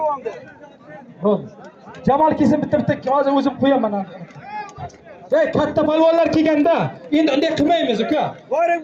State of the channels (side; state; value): both; identical; correlation 1.00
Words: Bo'ldi. Jamol kelsin bitta hozir o'zim qo'yaman. Ey katta palvonlar kelganda endi unday qilmaymiz uka. Boring